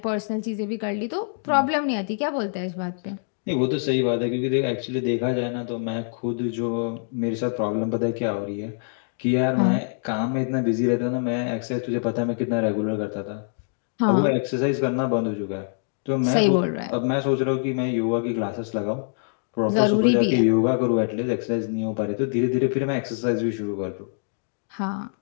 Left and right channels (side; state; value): right; silent; digital silence